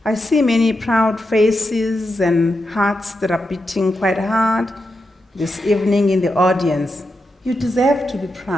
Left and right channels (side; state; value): both; normal; correlation 0.87